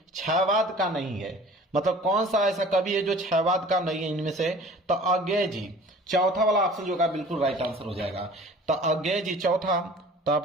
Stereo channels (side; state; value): both; normal; correlation 0.46